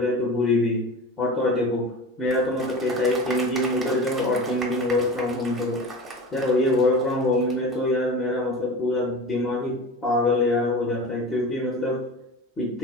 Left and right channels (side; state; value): both; normal; correlation 0.33